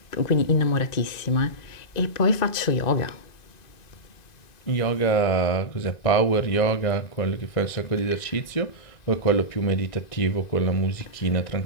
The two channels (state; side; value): late; right; 1.9 ms